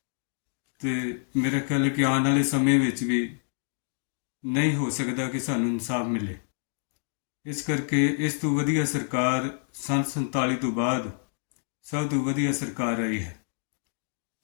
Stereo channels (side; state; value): right; silent; digital silence